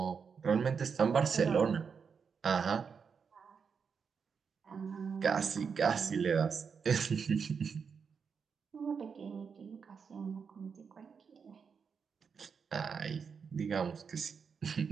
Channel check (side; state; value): left; quieter; 6.1 dB